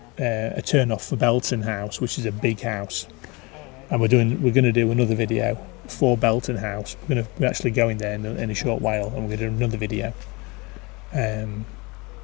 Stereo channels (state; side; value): quieter; right; 26.5 dB